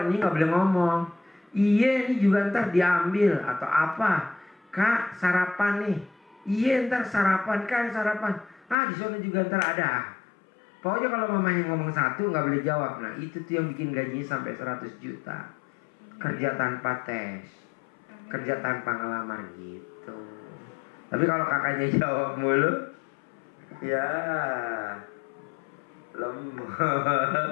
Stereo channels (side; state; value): right; drops out; at 8.8 s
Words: ini nggak boleh ngomong. Iya ini juga ntar diambil atau apa. Kak sarapan nih. Iya ntar sarapan kan sarapan. Di sana juga ntar ada. Pokoknya kalau mamanya ngomong satu nggak boleh jawab. Nah itu tuh yang bikin gajinya sampai 100 juta. Kerja tanpa tes, kerja tanpa ngelamar gitu. Tapi kalau kakaknya jawab mulu, ya